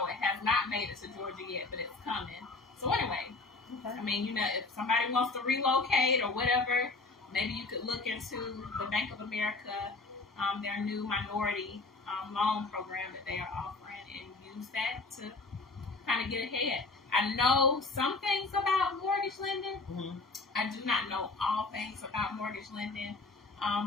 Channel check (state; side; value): quieter; right; 3.5 dB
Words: not made it to Georgia yet, but it's coming. So anyway, I mean, if somebody wants to relocate or whatever, maybe you could look into the Bank of America, their new minority loan program that they are offering, and use that to kind of get ahead. I know some things about mortgage lending. Mm-hmm. I do not know all things about mortgage lending.